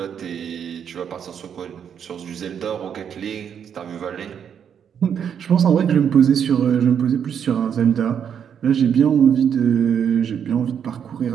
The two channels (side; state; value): left; quieter; 8.1 dB